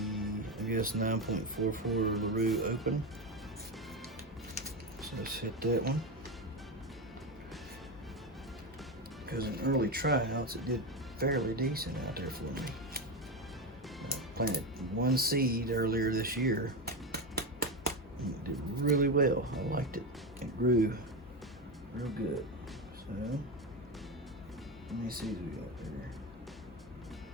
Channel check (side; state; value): both; normal; correlation 0.15